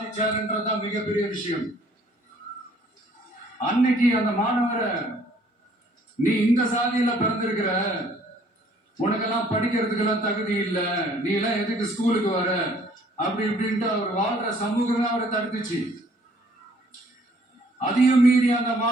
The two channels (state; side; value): normal; both; correlation 0.60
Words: மிகப்பெரிய விஷயம். அன்னைக்கு அந்த மாணவரை, நீ இந்த சாதியில பிறந்திருக்கிற, உனக்கெல்லாம் படிக்கிறதுக்கெல்லாம் தகுதி இல்ல, நீ எல்லாம் எதுக்கு ஸ்கூலுக்கு வர அப்படி இப்படின்ட்டு அவர் வாழ்ற சமூகம் அவரை தடுத்துச்சு. அதையும் மீறி அந்த